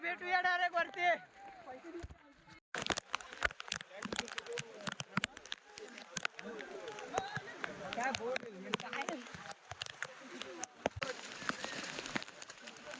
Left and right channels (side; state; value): both; identical; correlation 1.00